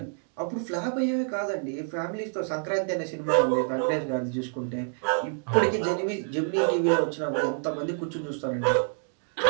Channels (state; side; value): silent; left; 60 dB below the other